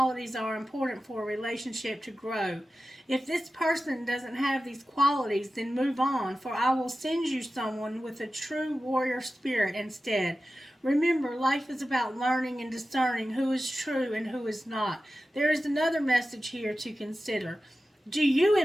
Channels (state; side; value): normal; both; correlation 0.94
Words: are important for a relationship to grow. If this person doesn't have these qualities, then move on, for I will send you someone with a true warrior spirit instead. Remember, life is about learning and discerning who is true and who is not. There is another message here to consider. Do you